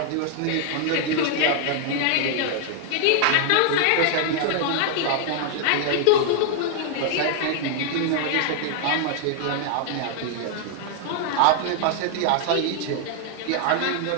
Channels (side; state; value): both; different; correlation 0.00